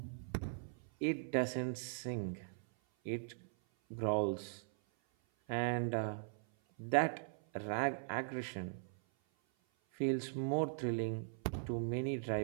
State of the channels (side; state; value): left; silent; 51 dB below the other